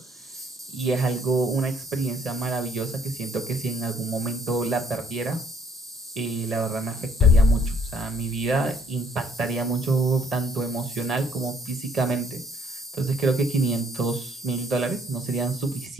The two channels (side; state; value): both; normal; correlation 0.63